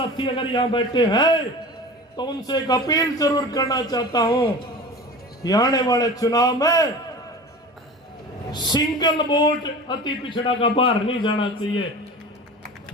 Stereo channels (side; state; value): both; normal; correlation 0.35